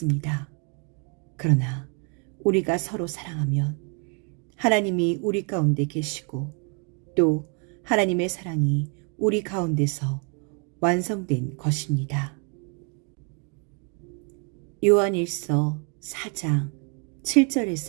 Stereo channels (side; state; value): left; quieter; 35.8 dB